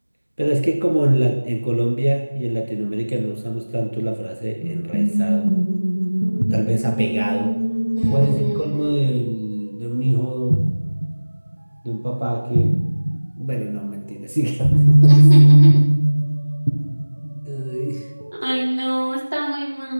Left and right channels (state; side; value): inverted; both; correlation -1.00